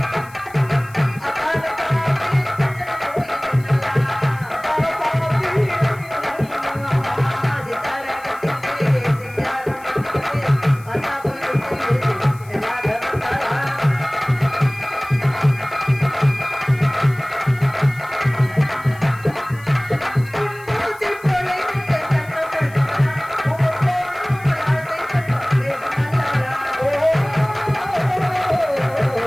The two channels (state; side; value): noise; left; hiss, 24 dB below the sound